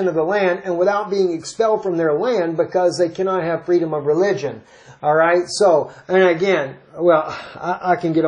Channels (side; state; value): both; identical; correlation 1.00